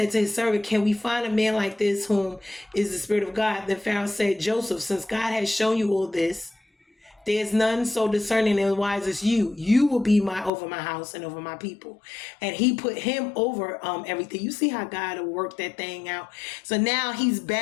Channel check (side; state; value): right; drops out; at 10.5 s